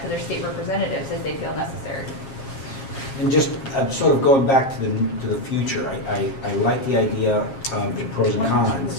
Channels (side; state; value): right; late; 7.4 ms